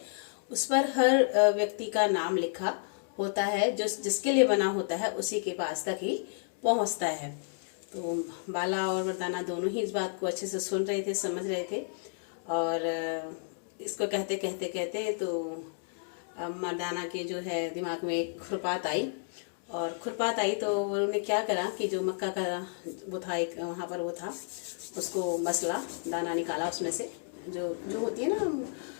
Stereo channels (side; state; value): right; silent; digital silence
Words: उस पर हर व्यक्ति का नाम लिखा होता है। जो जिसके लिए बना होता है उसी के पास तक ही पहुंचता है। तो बाला और मर्दाना दोनों ही इस बात को अच्छे से सुन रहे थे, समझ रहे थे। और इसको कहते कहते कहते तो मर्दाना के जो है दिमाग में एक खुरपात आई। और खुरपात आई तो उन्होंने क्या करा कि जो मक्का का वो था, एक वहाँ पर वो था, उसको मसला, दाना निकाला उसमें से, जो होती है